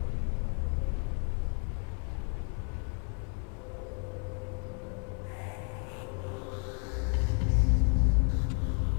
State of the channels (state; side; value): quieter; right; 37.4 dB